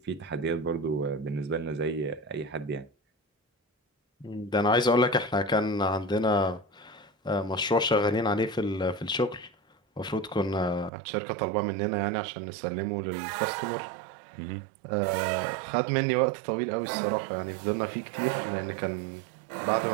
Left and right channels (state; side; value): drops out; left; at 10.9 s